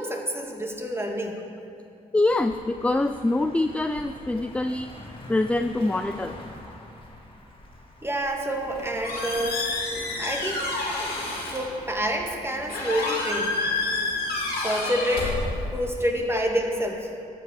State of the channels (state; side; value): normal; both; correlation 0.62